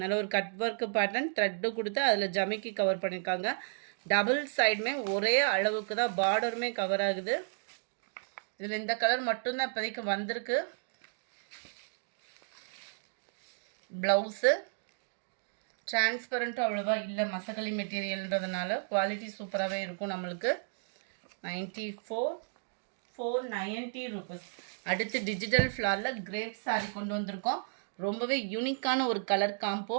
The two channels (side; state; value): left; silent; digital silence